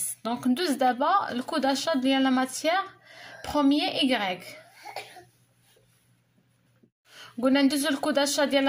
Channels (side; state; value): both; identical; correlation 1.00